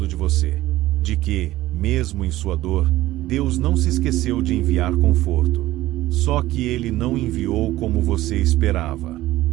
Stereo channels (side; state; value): left; quieter; 16.1 dB